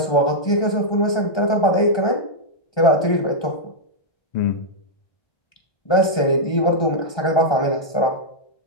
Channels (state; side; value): late; right; 1.2 ms